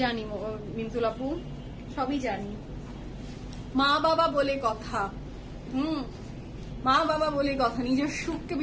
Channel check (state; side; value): identical; both; correlation 1.00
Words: মিন্তুল আপু, সবই জানি। মা বাবা বলে কথা, মা বাবা বলে কথা, নিজের সুখকে